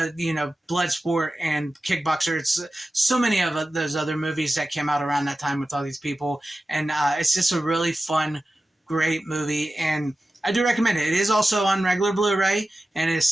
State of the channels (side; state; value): both; normal; correlation 0.94